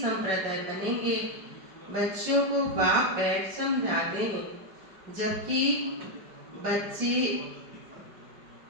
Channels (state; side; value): late; left; 5.0 ms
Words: बनेंगे। बच्चों को बाप बैठ समझाते हैं, जबकि बच्चे